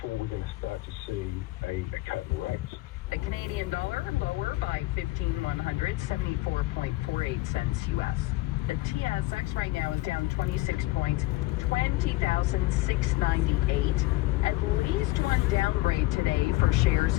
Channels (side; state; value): right; quieter; 18.7 dB